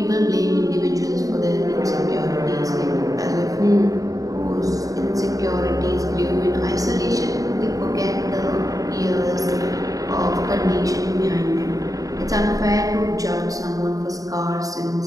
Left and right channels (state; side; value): late; left; 0.17 ms